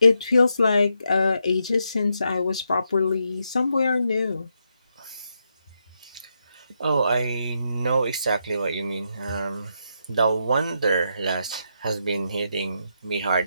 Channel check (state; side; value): inverted; both; correlation -0.81